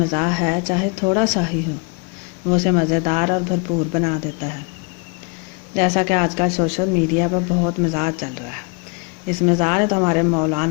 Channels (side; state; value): right; quieter; 32.3 dB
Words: है चाहे थोड़ा सा ही हो वो उसे मज़ेदार और भरपूर बना देता है। जैसा कि आजकल सोशल मीडिया पर बहुत मज़ाक चल रहा है। इस मज़ाक ने तो हमारे